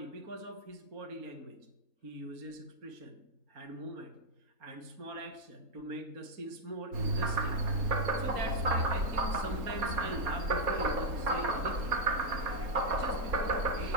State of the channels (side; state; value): left; late; 3.7 ms